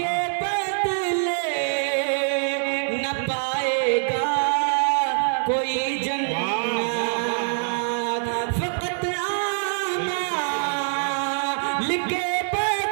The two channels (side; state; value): left; silent; digital silence